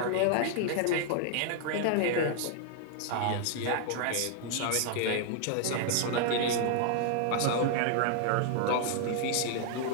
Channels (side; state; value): both; different; correlation 0.00